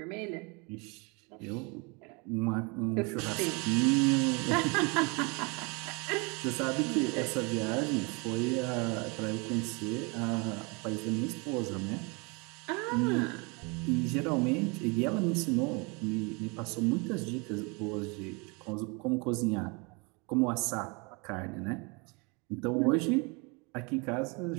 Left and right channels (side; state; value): left; quieter; 30.1 dB